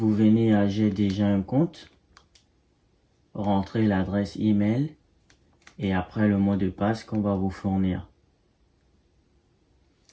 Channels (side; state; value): both; identical; correlation 1.00